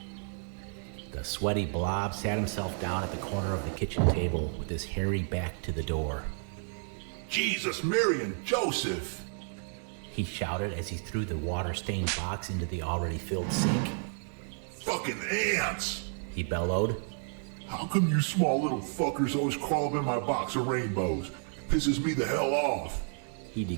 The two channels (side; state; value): left; silent; 57 dB below the other